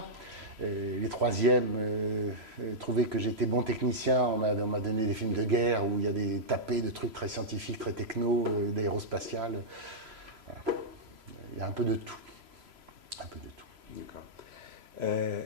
Les troisièmes trouvaient que j'étais bon technicien. On m'a donné des films de guerre où il y a des tapés de trucs très scientifiques, très techno, d'aérospatial. Voilà. Il y a un peu de tout. Un peu de tout. D'accord.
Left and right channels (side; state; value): left; late; 3.0 ms